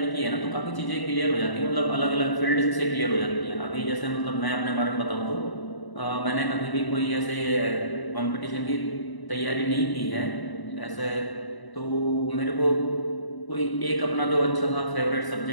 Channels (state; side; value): late; right; 1.0 ms